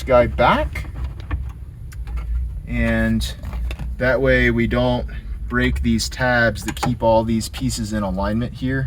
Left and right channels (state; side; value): identical; both; correlation 1.00